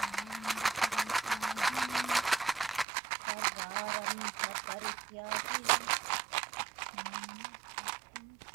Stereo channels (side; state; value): left; drops out; at 2.9 s